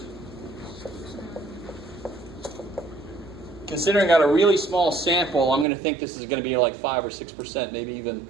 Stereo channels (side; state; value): left; drops out; at 5.7 s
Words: Considering I got a really small sample, I'm going to think this is going to be like 5 or 6%, maybe even,